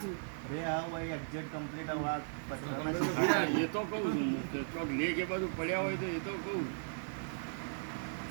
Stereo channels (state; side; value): silent; left; 53 dB below the other